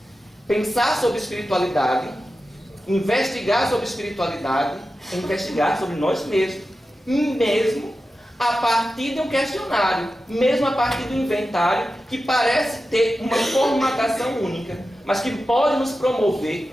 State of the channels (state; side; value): normal; both; correlation 0.92